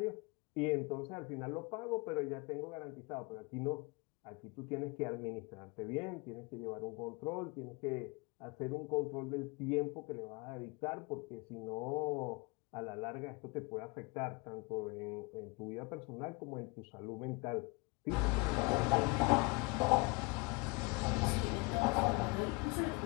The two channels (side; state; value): right; quieter; 27.7 dB